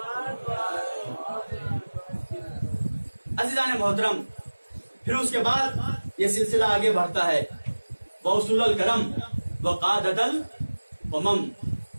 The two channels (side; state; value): both; inverted; correlation -1.00